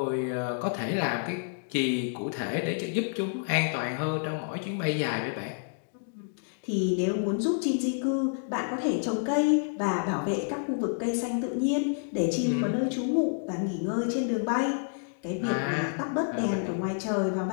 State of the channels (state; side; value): silent; right; digital silence